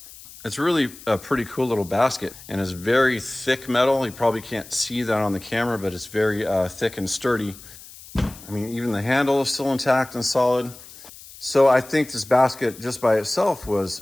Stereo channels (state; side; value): noise; left; hiss, 18 dB below the sound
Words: It's really a pretty cool little basket, and it's very thick metal. You probably can't see that on the camera, but it's very thick and sturdy. I mean, even the handle is still intact and solid. So I think this basket just by itself